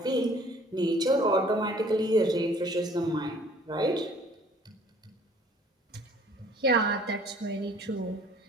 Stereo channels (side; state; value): both; normal; correlation 0.55